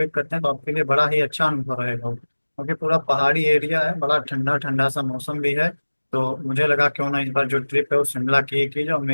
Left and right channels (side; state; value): both; inverted; correlation -1.00